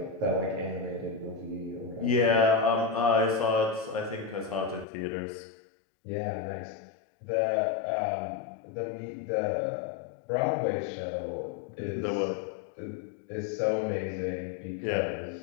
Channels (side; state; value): right; drops out; at 4.9 s